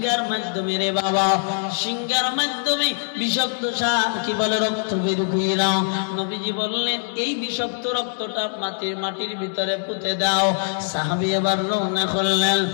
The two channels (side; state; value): right; silent; digital silence